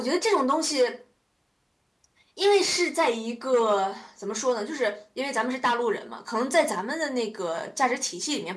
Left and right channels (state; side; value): identical; both; correlation 1.00